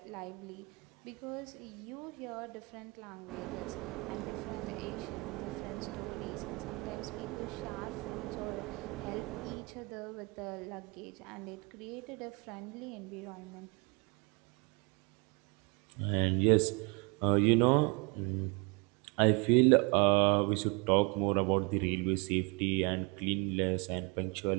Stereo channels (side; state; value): left; quieter; 29.5 dB